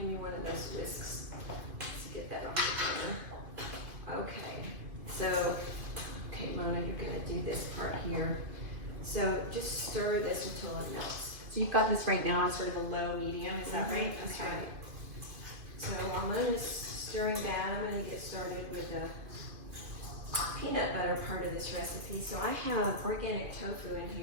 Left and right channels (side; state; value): left; late; 2.5 ms